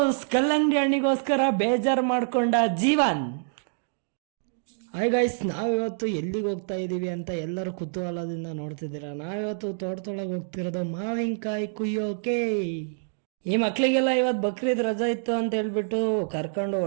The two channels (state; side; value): silent; left; digital silence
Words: ಕಲ್ಲಂಗಡಿ ಹಣ್ಣಿಗೋಸ್ಕರ ಬೇಜಾರು ಮಾಡ್ಕೊಂಡ ಜೀವನ್. ಹಾಯ್ ಗೈಸ್, ನಾವಿವತ್ತು ಎಲ್ಲಿಗೆ ಹೋಗ್ತಾ ಇದೀವಿ ಅಂತ ಎಲ್ಲರೂ ಕುತೂಹಲದಿಂದ ನೋಡ್ತಿದ್ದೀರಾ. ನಾವಿವತ್ತು ತೋಟದೊಳಗೆ ಹೋಗ್ತಿರೋದು ಮಾವಿನಕಾಯಿ ಕುಯ್ಯೋಕೆ. ಈ ಮಕ್ಳಿಗೆಲ್ಲ ಇವತ್ತು ಬಕ್ರೀದ್ ರಜಾ ಇತ್ತು ಅಂತ ಹೇಳ್ಬಿಟ್ಟು ಕರ್ಕೊಂಡು